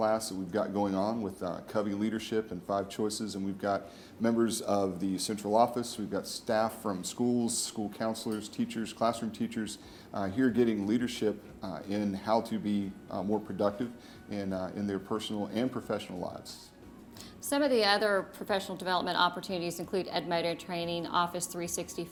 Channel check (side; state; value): both; identical; correlation 1.00